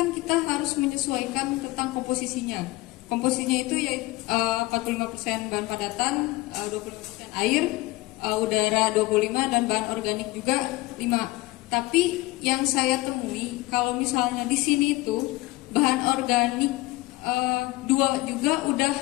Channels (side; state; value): right; quieter; 20.1 dB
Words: kita harus menyesuaikan tentang komposisinya. Komposisinya itu yaitu 45% bahan padatan, 20% air, udara 25, dan bahan organik juga 5. Tapi yang saya temui kalau misalnya di sini itu bahan organik 2 juga udah